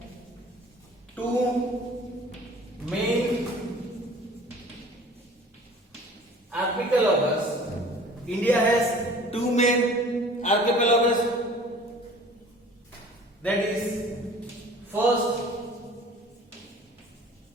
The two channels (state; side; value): normal; both; correlation 0.47